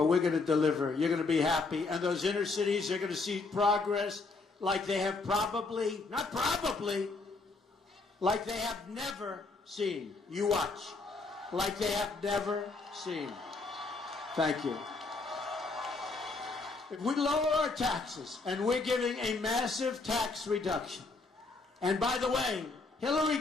we're going to deliver. You're going to be happy. And those inner cities, they're going to see progress like they have probably, not probably, like they have never seen. You watch. Like they have never seen. Thank you. If we lower our taxes, and we're giving a massive tax reduction, and by the way, Hillary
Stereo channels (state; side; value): quieter; right; 3.7 dB